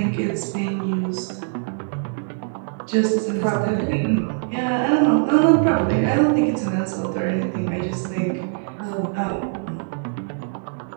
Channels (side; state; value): left; silent; digital silence